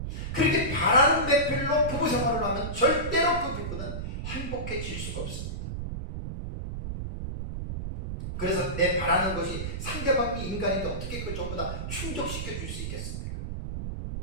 그렇게 바라는 배필로 부부 생활을 하면 절대로 그 부부는 행복해질 수가 없습니다. 그래서 내 바라는 것이 상대방이 인간인데 어떻게 그걸 전부 다 충족시켜 줄 수 있겠습니까?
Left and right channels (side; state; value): right; noise; rumble, 5 dB below the sound